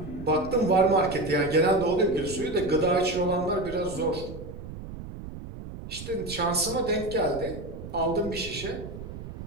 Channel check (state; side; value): noise; right; rumble, 11 dB below the sound